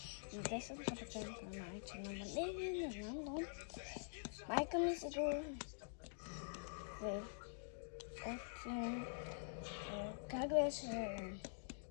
на 10% на майче намаление, не знам, но майка ми се го как беше?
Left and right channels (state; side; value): silent; right; digital silence